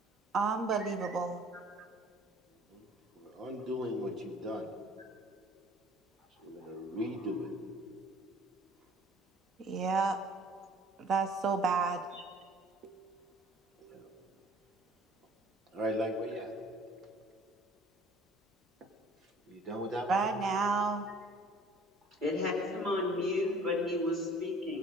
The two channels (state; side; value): normal; both; correlation 0.52